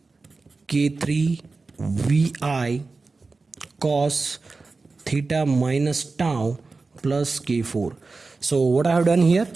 K3 VI cos theta minus tau plus K4. So what I have done here,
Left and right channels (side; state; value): left; quieter; 3.9 dB